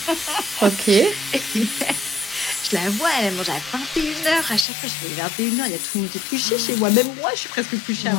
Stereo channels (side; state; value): right; drops out; at 4.7 s